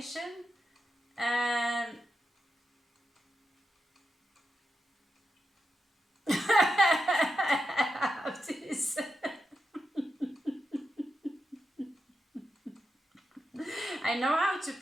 And this. I know how to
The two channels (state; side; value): normal; both; correlation 0.88